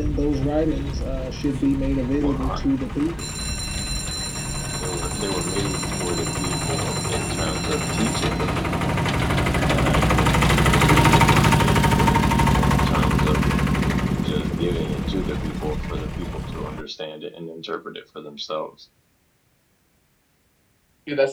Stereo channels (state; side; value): identical; both; correlation 1.00